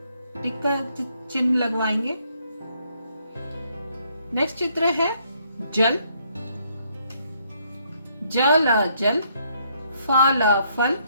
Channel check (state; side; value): inverted; both; correlation -0.70